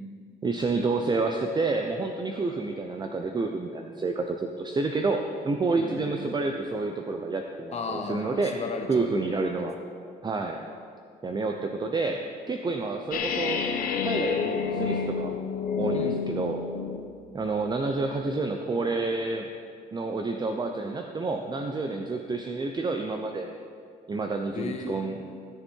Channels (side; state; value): both; normal; correlation 0.55